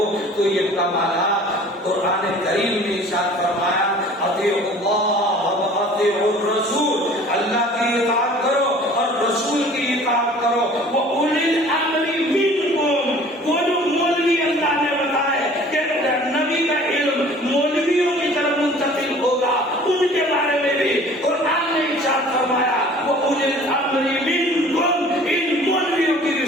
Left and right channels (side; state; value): both; normal; correlation 0.48